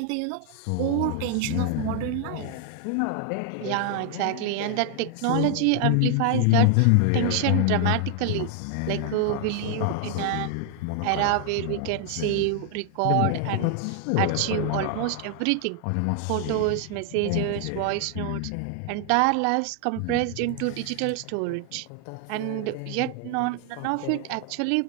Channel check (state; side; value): different; both; correlation 0.00